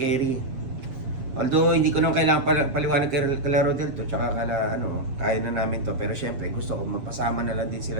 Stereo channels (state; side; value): late; left; 7.4 ms